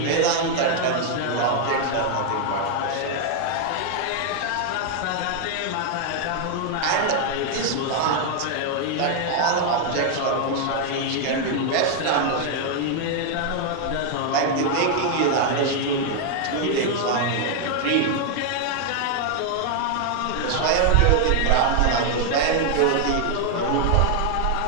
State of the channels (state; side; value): different; both; correlation 0.00